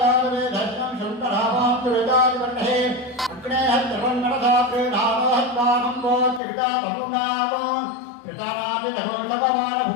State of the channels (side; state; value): right; drops out; at 6.4 s